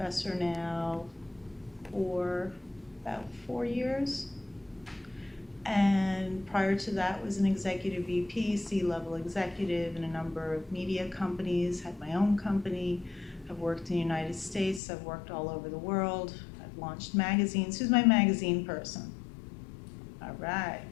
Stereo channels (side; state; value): right; drops out; at 14.8 s